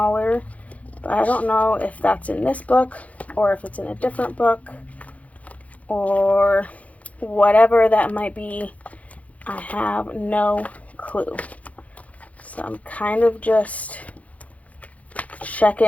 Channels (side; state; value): right; late; 0.068 ms